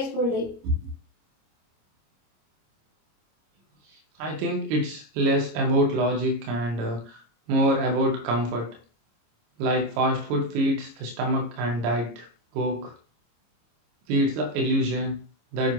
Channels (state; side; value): late; left; 26 ms